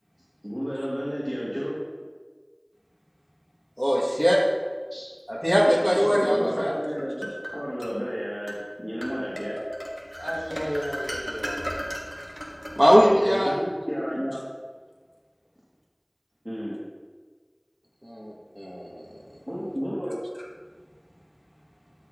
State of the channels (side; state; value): both; identical; correlation 1.00